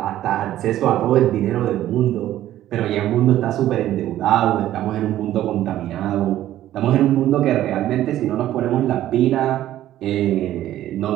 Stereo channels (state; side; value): quieter; left; 13.2 dB